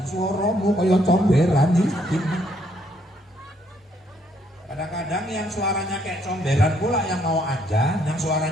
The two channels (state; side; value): normal; both; correlation 0.69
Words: suaramu kaya comberan iki. Kadang-kadang yang suaranya kayak comberan pula yang mau ajan, yang